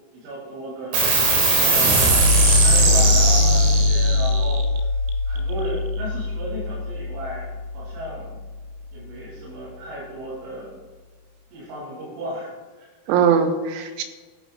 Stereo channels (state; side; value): late; left; 31 ms